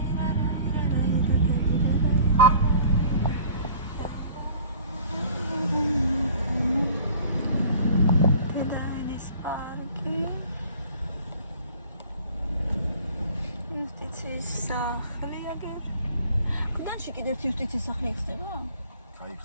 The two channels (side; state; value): both; inverted; correlation -0.48